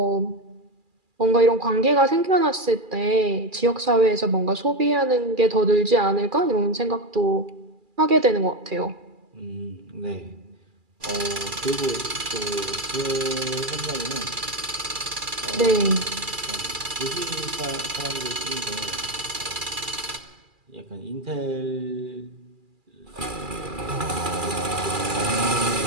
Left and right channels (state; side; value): late; left; 2.4 ms